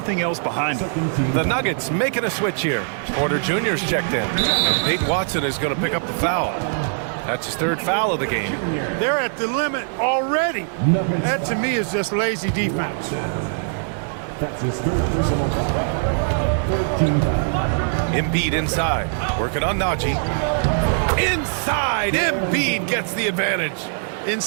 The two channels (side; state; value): left; silent; digital silence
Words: else behind it. The Nuggets making a switch here. Porter Jr.'s checked in. And Peyton Watson is going to pick up the foul. That's his 3rd foul of the game. They're at the limit already. That, to me, is just lazy defense. That's his 3rd personal foul. 13 foul. Embiid inside. Working on Najee. Inside! Embiid gets the advantage.